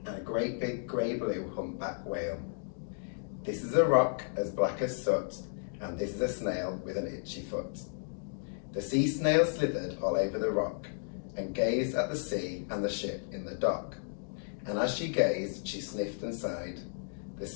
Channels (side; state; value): right; silent; digital silence